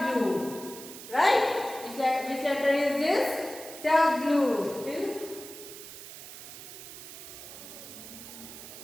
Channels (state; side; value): noise; right; hiss, 13 dB below the sound